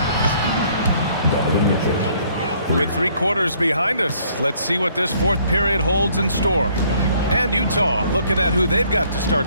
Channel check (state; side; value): inverted; both; correlation -0.63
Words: With 3 quarters behind us, let's see what this fourth period holds in store. And Utah looking at who they've got to